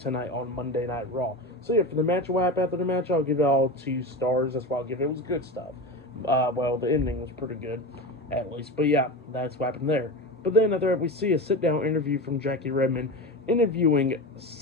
on Monday Night Raw. So yeah, for the match, what happened after the match, I'll give it all 2 stars. That's why I'll give it. It was good stuff. Well, the ending was pretty good, at least. But yeah, that's what happened there. But then after that, we see a sit-down interview from Jackie Redmond interviewing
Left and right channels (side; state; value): both; normal; correlation 0.25